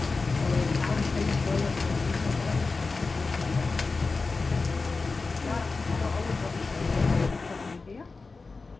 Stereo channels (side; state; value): right; quieter; 4.0 dB